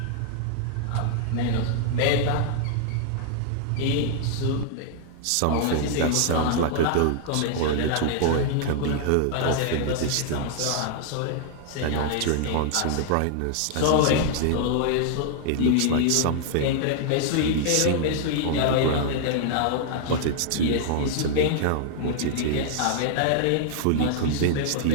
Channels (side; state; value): both; different; correlation -0.01